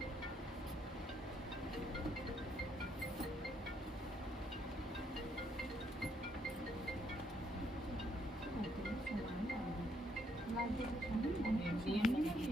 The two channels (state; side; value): normal; both; correlation 0.72